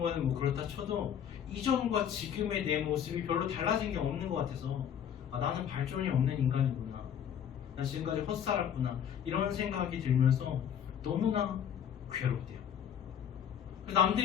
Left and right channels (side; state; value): right; quieter; 8.9 dB